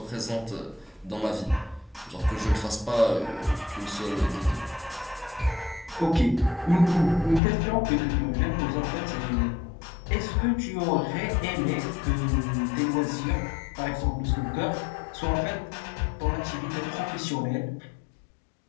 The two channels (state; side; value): drops out; right; at 7.4 s